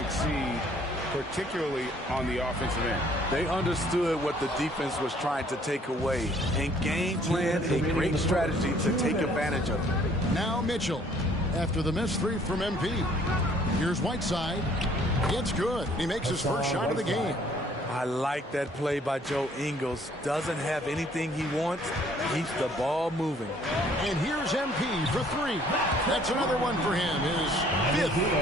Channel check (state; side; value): normal; both; correlation 0.60